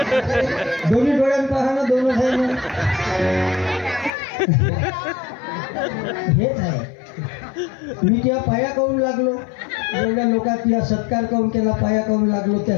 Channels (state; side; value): drops out; right; at 4.1 s